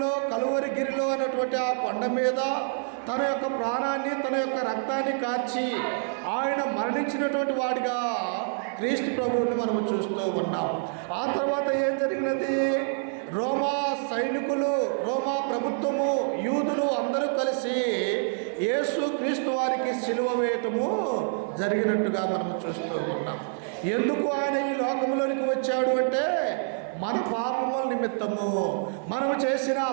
కలువరిగిరిలో అన్నటువంటి ఆ కొండ మీద తన యొక్క ప్రాణాన్ని, తన యొక్క రక్తాన్ని కార్చి ఆయన మరణించినటువంటి వాడిగా క్రీస్తు ప్రభువుని మనము చూస్తూ ఉన్నాం. ఆ తర్వాత ఏం జరిగినది? రోమా సైనికులు, రోమా ప్రభుత్వము, యూదులు అందరూ కలిసి యేసు క్రీస్తు వారికి సిలువ వేయటము జరిగినట్టుగా మనము చూస్తూ ఉన్నాం. ఎందుకు ఆయన ఈ లోకంలోనికి వచ్చాడు అంటే, మన పాపముల నిమిత్తము, మనము చేసిన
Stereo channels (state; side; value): silent; left; 60 dB below the other